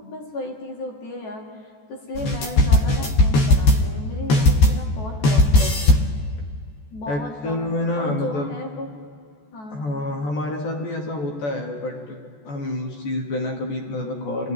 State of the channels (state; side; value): late; right; 14 ms